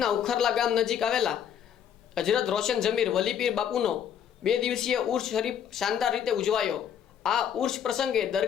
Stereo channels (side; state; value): right; quieter; 8.8 dB